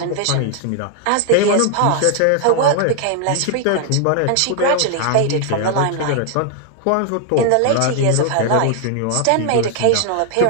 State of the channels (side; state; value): both; different; correlation 0.00